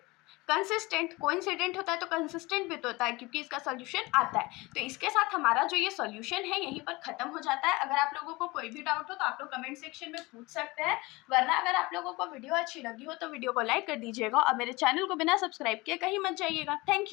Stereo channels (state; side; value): quieter; right; 22.8 dB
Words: consistent. Coincident होता है तो कंसिस्टेंट भी तो होता है क्योंकि इसका सोल्यूशन आता है। तो इसके साथ हमारा जो ये सोल्यूशन है यहीं पर खत्म हो जाता है। अगर आप लोगों को कोई भी डाउट हो तो आप लोग कमेंट सेक्शन में पूछ सकते हैं, वरना अगर आप लोगों को वीडियो अच्छी लगी हो तो वीडियो को लाइक कर दीजिएगा और मेरे चैनल को बिना सब्सक्राइब किए कहीं मत जाइएगा।